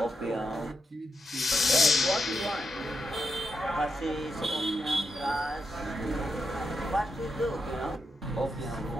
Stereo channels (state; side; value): normal; both; correlation 0.85